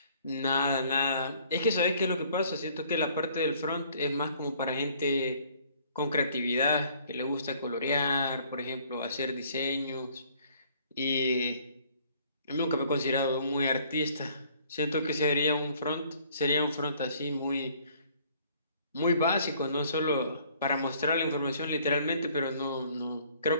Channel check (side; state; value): both; inverted; correlation -0.59